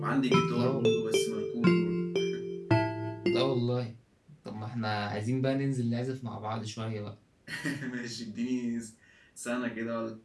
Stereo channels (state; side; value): identical; both; correlation 1.00